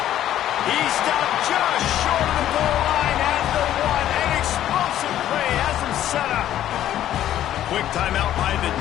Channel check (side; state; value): right; quieter; 12.0 dB